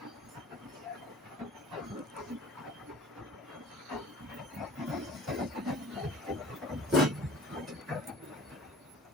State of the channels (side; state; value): both; normal; correlation 0.44